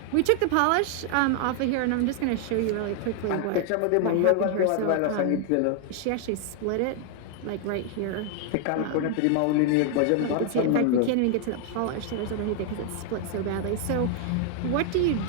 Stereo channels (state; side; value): different; both; correlation 0.00